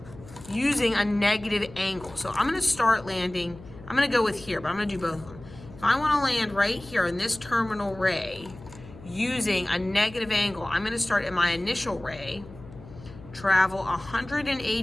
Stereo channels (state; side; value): noise; left; hum, 18 dB below the sound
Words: using a negative angle. So I'm going to start landing, I'm going to go with here, but I'm going to do both of them. If I want to land right here in this terminal ray using a negative angle, I'm going to start at my initial ray, travel